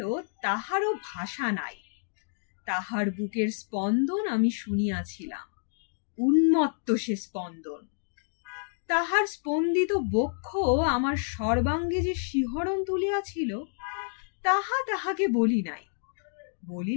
তাহারও ভাষা নাই। তাহার বুকের স্পন্দন আমি শুনিয়াছিলাম, উন্মত্ত সে স্পন্দন। তাহার স্পন্দিত বক্ষ আমার সর্বাঙ্গে যে শিহরণ তুলিয়াছিল, তাহা তাহাকে বলি নাই।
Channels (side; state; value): right; silent; digital silence